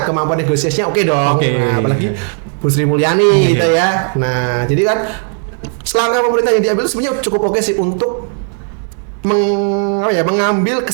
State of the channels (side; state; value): left; silent; 56 dB below the other